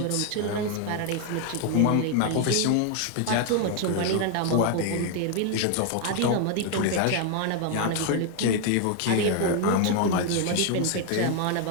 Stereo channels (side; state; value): both; different; correlation 0.00